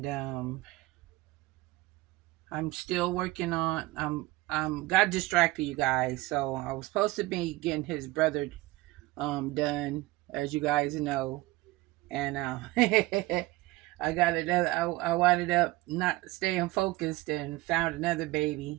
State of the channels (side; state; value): left; quieter; 19.6 dB